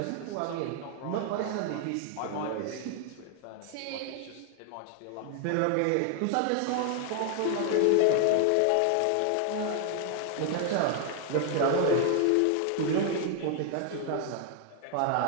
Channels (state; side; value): different; both; correlation 0.00